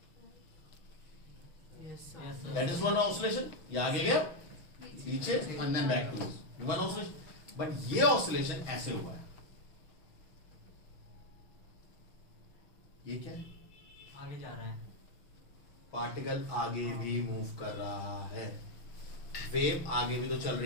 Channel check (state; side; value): late; right; 6.2 ms